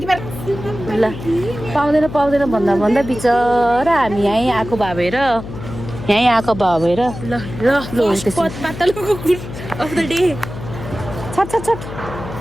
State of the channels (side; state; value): left; noise; hum, 11 dB below the sound